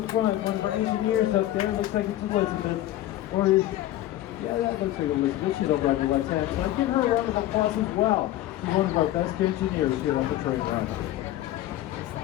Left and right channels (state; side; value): quieter; right; 14.3 dB